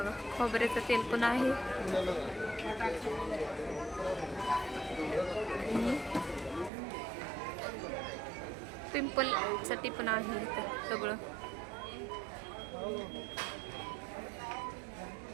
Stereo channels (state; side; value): drops out; left; at 6.7 s